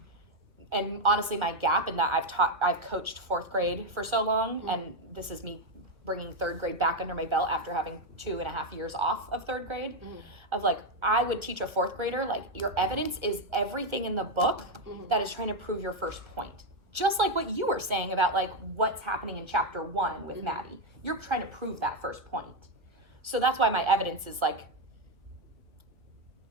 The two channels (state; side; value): late; left; 1.3 ms